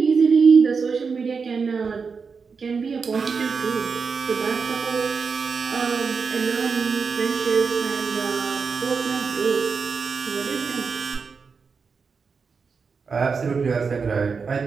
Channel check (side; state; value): left; quieter; 5.3 dB